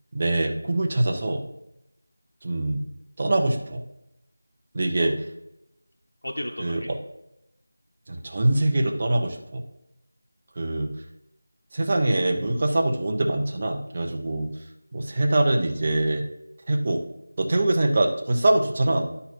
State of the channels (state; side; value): inverted; both; correlation -0.97